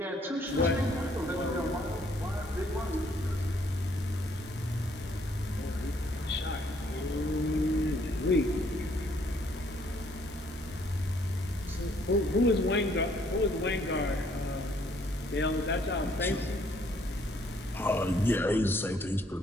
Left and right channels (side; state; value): both; normal; correlation 0.65